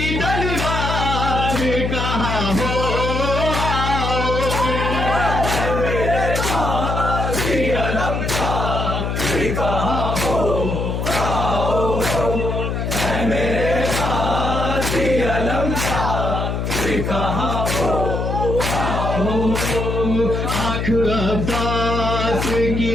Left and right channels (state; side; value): noise; left; hum, 2 dB below the sound